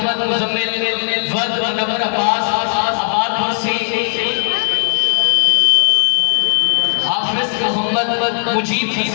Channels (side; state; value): right; silent; 69 dB below the other